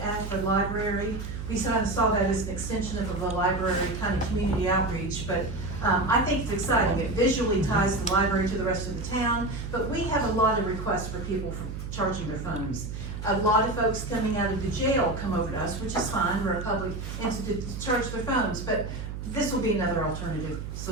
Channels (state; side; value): noise; right; hum, 7 dB below the sound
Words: the library. We kind of saw that as an extension of the library, kind of community outreach, but I think it's exciting. It visually ties the library to the rest of the town, but we have a lot of requests for people for charging their phones. A lot of folks coming out of the jail come over to us, which is fine, we're a public entity to charge their phones, but this will be another alternative